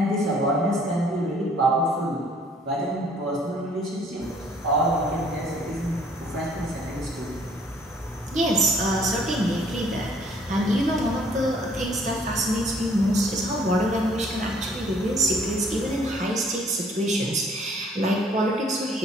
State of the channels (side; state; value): both; normal; correlation 0.60